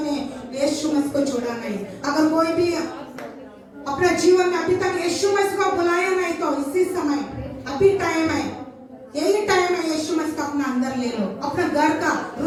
यीशु मसीह को छोड़ा नहीं। अगर कोई भी अपना जीवन में अभी तक यीशु मसीह को बुलाया नहीं तो इसी समय अभी टाइम है, यही टाइम है, यीशु मसीह को अपना अंदर ले लो, अपना घर का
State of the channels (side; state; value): both; identical; correlation 1.00